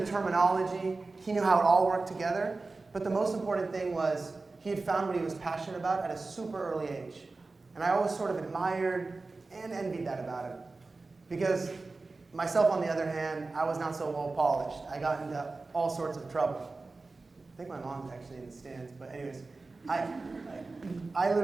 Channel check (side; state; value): left; quieter; 3.6 dB